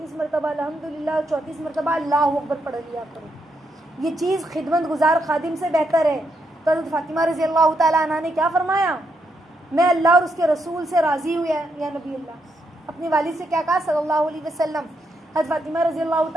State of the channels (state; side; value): normal; both; correlation 0.79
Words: मरतबा अल्हम्दुलिल्लाह, 34 मरतबा अल्लाहु अकबर पढ़ लिया करो। ये चीज़ खिदमत गुजार खादिम से बेहतर है। तो हज़रत फ़ातिमा रज़ी अल्लाह तआला अन्हा ने क्या फरमाया? मैं अल्लाह और उसके रसूल से राज़ी हुई है या नबी अल्लाह। अपनी वालिद से क्या कहा सल्लल्लाहु अलैहि वसल्लम? हज़रत फ़ातिमा रज़ी अल्लाह